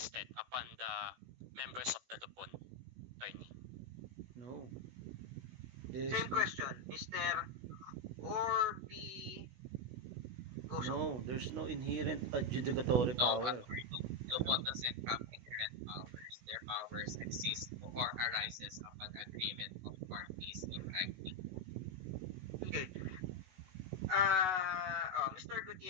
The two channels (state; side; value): late; left; 16 ms